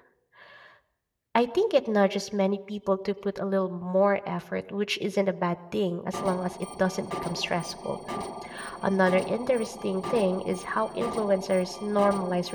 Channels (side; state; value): both; identical; correlation 1.00